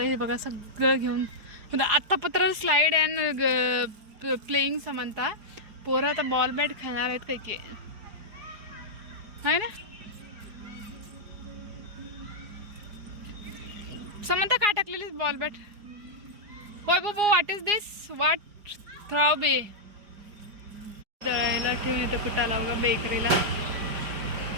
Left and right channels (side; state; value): left; late; 4.8 ms